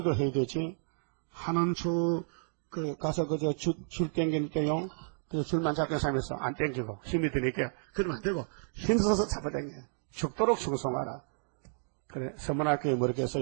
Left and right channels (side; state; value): left; silent; digital silence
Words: 해야 되지. 하는 가서 줄 땡길 때요. 그 줄만 잡는 사람에서 안 땡기고 힘이 드니까 그러면 안 되고 힘써서 잡아당겨. 죽도록 충성하라. 그래 서문학교에 뭐라고